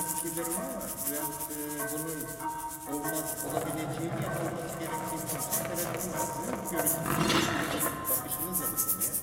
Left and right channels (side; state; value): both; identical; correlation 1.00